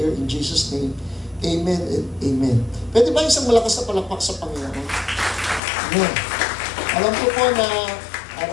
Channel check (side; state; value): right; drops out; at 5.6 s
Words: in Jesus' name. Amen and amen. Pwede ba isang malakas na palakpak sa Panginoon? Amen. Alam ko po na